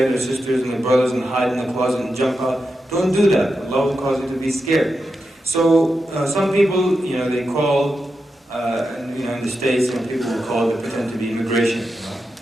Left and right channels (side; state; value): both; normal; correlation 0.88